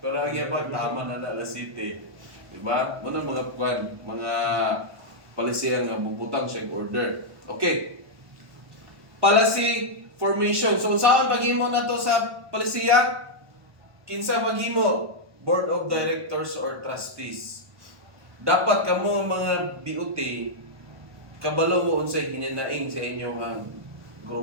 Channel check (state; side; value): late; left; 1.1 ms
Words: Pero ang yabag, taman na alas 7. Di ba? Muna mga palisiyan nga bubutang siya order. Okay. Policy formation. So, saan paghimo na to sa palisiya? Kinsa paghimo? Board of Directors or Trustees. Dapat kamo mga BOT, kabalo mo unsay hininaing sa inyong